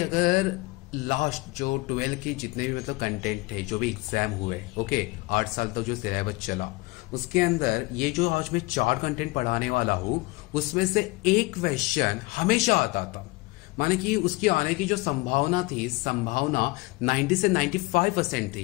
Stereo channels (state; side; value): quieter; right; 23.3 dB